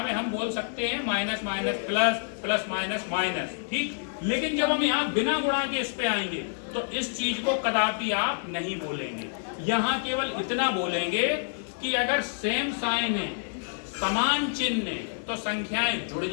में हम बोल सकते हैं minus minus plus, plus minus minus, ठीक। लेकिन जब हम यहाँ बिना गुणा के इस पे आएंगे तो इस चीज को कदापि आप नहीं बोलेंगे। यहाँ केवल इतना बोलेंगे कि अगर सेम साइन है, समान चिन्ह है, तो संख्याएं जुड़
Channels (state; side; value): silent; right; 55 dB below the other